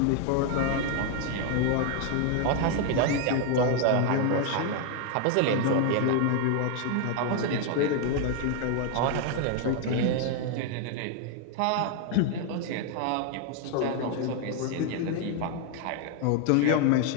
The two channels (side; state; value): both; different; correlation 0.00